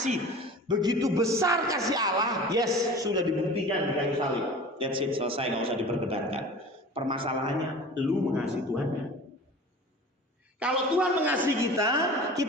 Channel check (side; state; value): both; normal; correlation 0.39